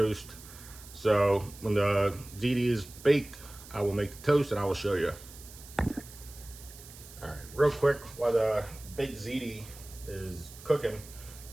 So when the ziti is baked, I will make the toast and I will show you. All right, real quick, while the baked ziti is cooking,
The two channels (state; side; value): noise; right; hiss, 18 dB below the sound